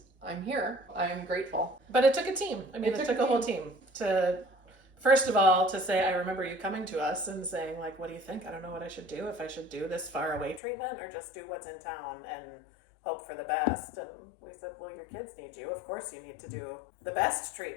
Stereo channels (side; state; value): right; drops out; at 10.6 s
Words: I'm here. I'm grateful. But it took a team. I mean, it took a whole team to, first of all, to say, I remember you coming to us and saying, like, what do you think? I don't know what I should do. If I should do this far away treatment or just do what's in town and hope for the best. And we said, well, your kids need you. Of course you need to do the best